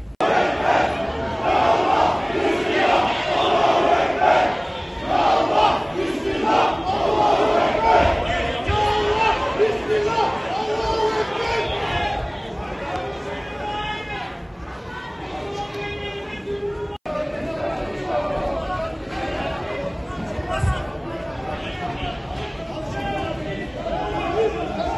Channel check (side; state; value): both; identical; correlation 1.00